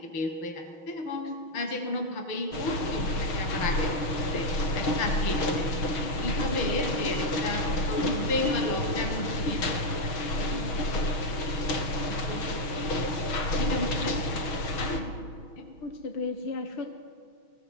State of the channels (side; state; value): right; late; 6.2 ms